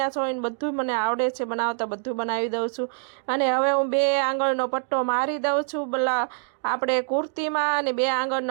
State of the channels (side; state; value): left; silent; 62 dB below the other